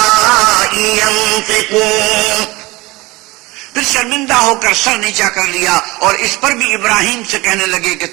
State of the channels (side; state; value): left; quieter; 21.9 dB